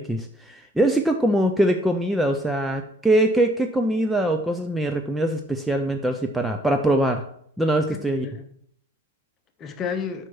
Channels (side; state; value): both; normal; correlation 0.67